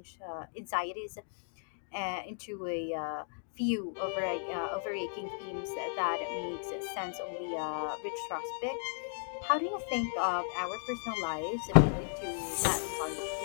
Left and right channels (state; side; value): silent; right; digital silence